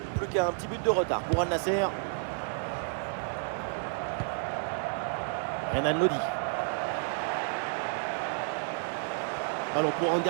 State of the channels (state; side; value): silent; left; 56 dB below the other